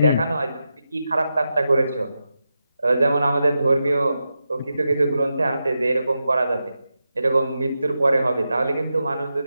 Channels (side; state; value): both; inverted; correlation -0.89